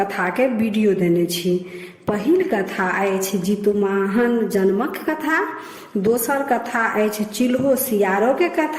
के वीडियो देने छी। पहिल कथा अछि जितुवाहन जन्मक कथा, दोसर कथा अछि चिल्हो सियारो के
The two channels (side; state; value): both; identical; correlation 1.00